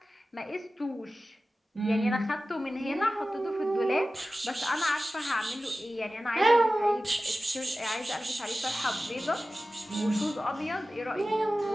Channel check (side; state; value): both; normal; correlation 0.96